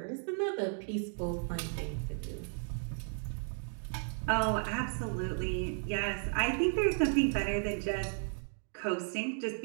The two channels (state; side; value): silent; left; 55 dB below the other